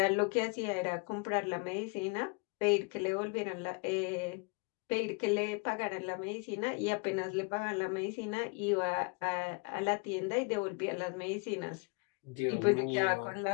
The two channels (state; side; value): quieter; right; 32.3 dB